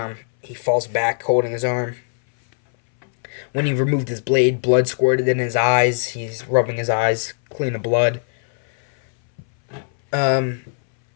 He falls back holding his arm. When he removed his blade, blood squirted in his eyes. He's rubbing his eyes clean of blood.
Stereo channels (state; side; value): silent; right; 62 dB below the other